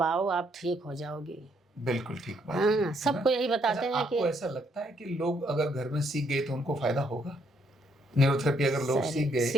आओ, आप ठीक हो जाओगी। बिल्कुल ठीक बात। हाँ, सबको यही बताते अच्छा, हैं कि आपको ऐसा लगता है कि लोग अगर घर में सीख गए तो उनको फायदा होगा? न्यूरोथेरेपी अगर लोग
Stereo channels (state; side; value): normal; both; correlation 0.72